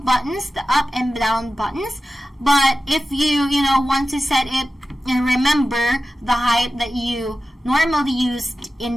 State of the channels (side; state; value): both; normal; correlation 0.94